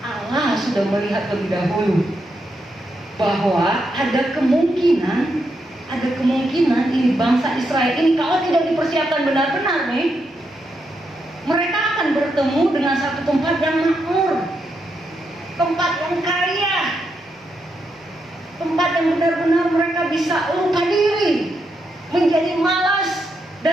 Allah sudah melihat lebih dahulu bahwa ada kemungkinan ini bangsa Israel ini kalau tidak dipersiapkan benar-benar nih, mereka akan bertemu dengan satu tempat yang makmur, tempat yang kaya, tempat yang benar-benar mereka bisa lupa diri, menjadi malas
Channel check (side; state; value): both; normal; correlation 0.82